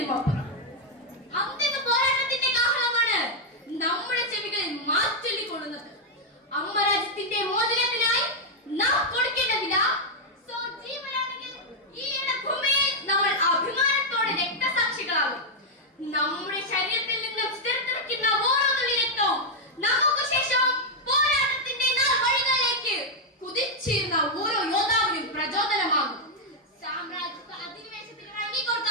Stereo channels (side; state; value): both; normal; correlation -0.01